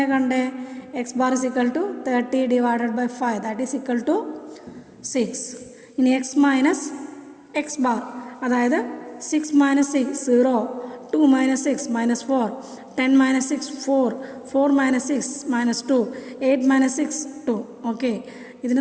കണ്ടേ? X bar is equal to 30 divided by 5 that is equal to 6. ഇനി എക്സ് മൈനസ് എക്സ് ബാർ, അതായത് 6 minus 6 0, 2 minus 6 minus 4, 10 minus 6 4, 4 minus 6 minus 2, 8 minus 6 2. Okay,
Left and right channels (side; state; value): both; identical; correlation 1.00